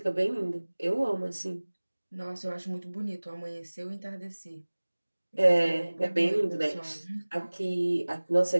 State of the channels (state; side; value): inverted; both; correlation -1.00